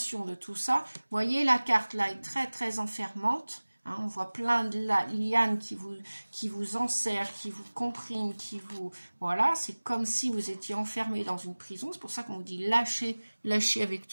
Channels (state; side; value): inverted; both; correlation -1.00